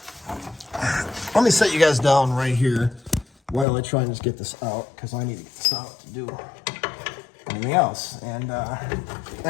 Let me set you guys down right here while I try and just get this out, because I need to get this out to do anything else. And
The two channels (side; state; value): right; drops out; at 3.7 s